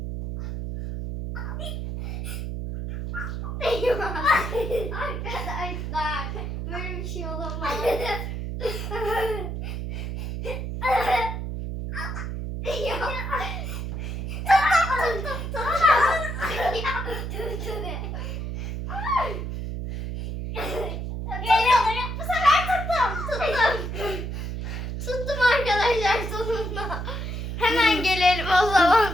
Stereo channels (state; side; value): noise; right; hum, 4 dB below the sound